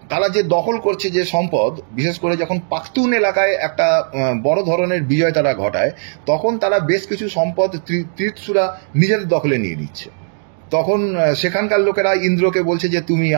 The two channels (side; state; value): left; silent; digital silence